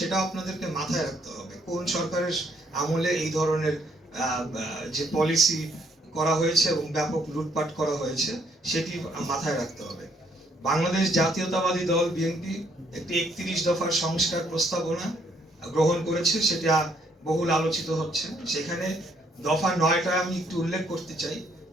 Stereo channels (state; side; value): normal; both; correlation 0.68